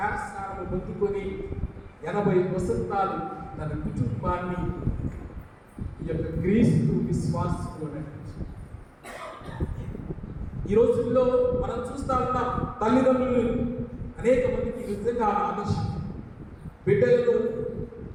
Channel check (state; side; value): identical; both; correlation 1.00